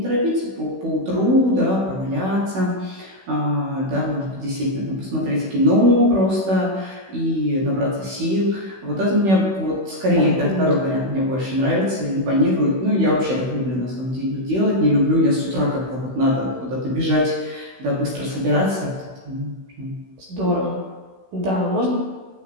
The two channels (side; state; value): left; late; 16 ms